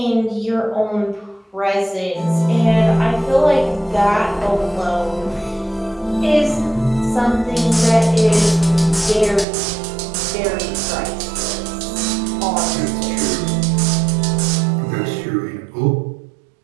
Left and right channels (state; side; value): drops out; left; at 9.5 s